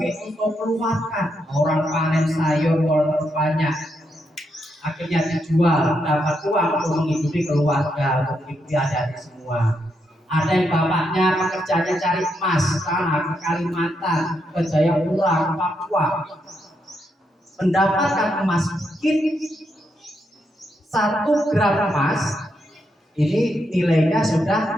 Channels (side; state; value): both; normal; correlation 0.80